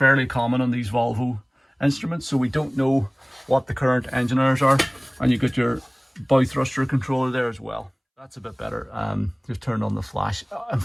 common on these Volvo instruments, so we don't know what the current engine hours are. And you got your bow thruster controller there as well. That's a bit better. Just turned on the flash.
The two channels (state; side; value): identical; both; correlation 1.00